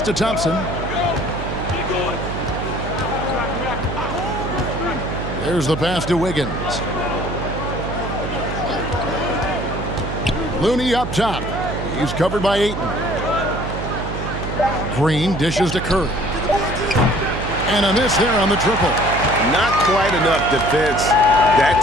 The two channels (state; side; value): noise; right; hum, 6 dB below the sound